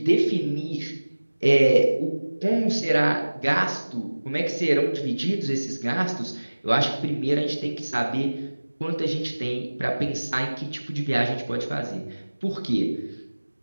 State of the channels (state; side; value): inverted; both; correlation -1.00